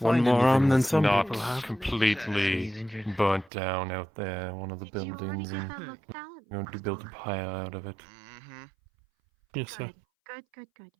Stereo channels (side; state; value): left; drops out; at 3.5 s